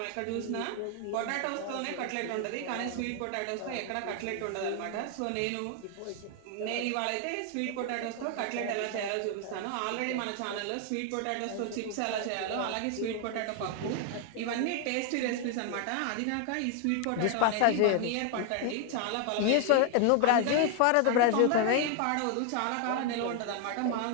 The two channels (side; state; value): both; different; correlation 0.00